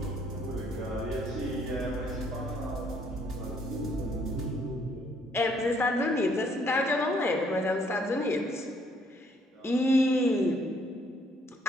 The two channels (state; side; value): normal; both; correlation 0.66